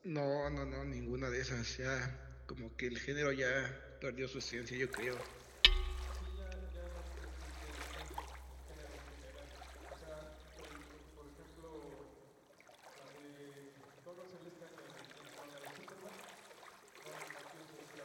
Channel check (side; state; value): both; identical; correlation 1.00